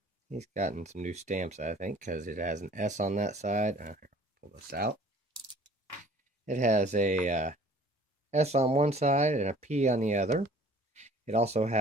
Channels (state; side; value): normal; both; correlation 0.51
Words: he's gotten some new stamps, I think, because it has an S on that side. Here, pull this out. It has a S on one side and a P on the other. It also